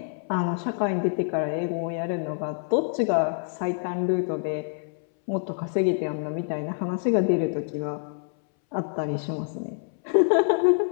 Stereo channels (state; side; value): silent; right; 61 dB below the other